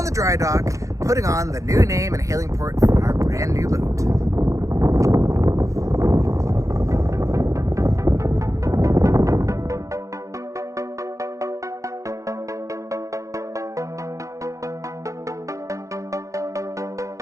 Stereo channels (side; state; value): left; late; 0.15 ms